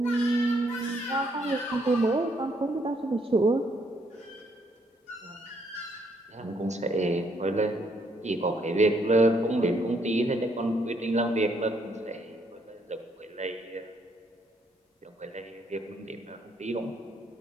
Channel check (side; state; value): both; normal; correlation 0.71